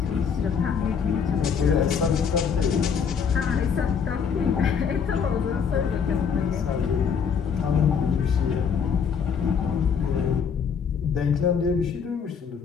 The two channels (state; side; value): quieter; right; 6.7 dB